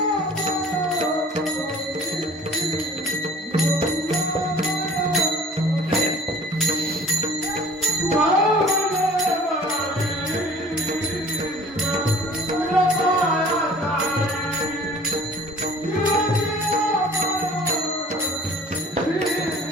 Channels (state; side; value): normal; both; correlation 0.48